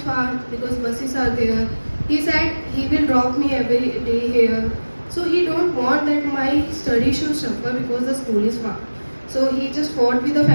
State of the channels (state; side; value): inverted; both; correlation -1.00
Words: far because buses are there. He said he will drop me every day here. So he don't want that my study should suffer because the school is far. So he just fought with the